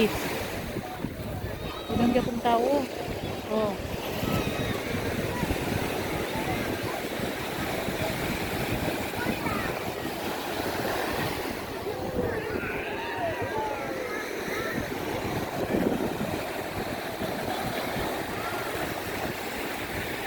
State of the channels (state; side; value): identical; both; correlation 1.00